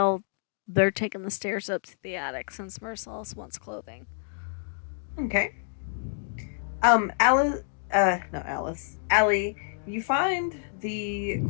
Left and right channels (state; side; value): silent; right; digital silence